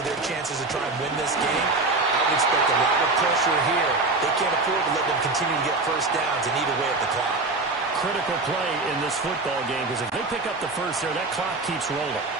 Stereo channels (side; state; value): left; quieter; 3.4 dB